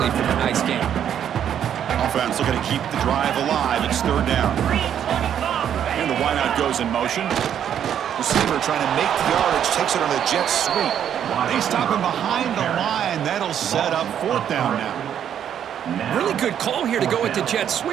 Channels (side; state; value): left; quieter; 9.4 dB